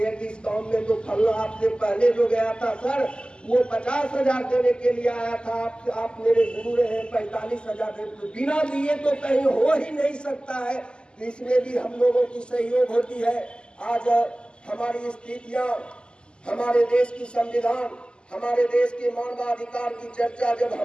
कि इस काम में तो फलना आपसे पहले जो गया था सर वो 50,000 देने के लिए आया था, आप मेरे गुरु रहे 45,000 दे, बिना दिए तो कहीं हो ही नहीं सकता है। तो इसमें भी हम लोगों की सहयोग होती है। आज हमारी स्थितियां, हमारे देश की संविधान, हमारे देश के मानवाधिकार की चर्चा जब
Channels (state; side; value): late; right; 0.049 ms